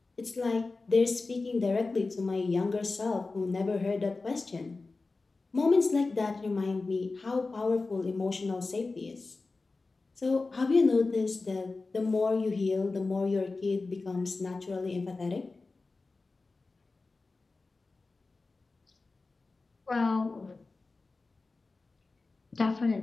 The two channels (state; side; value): quieter; right; 3.7 dB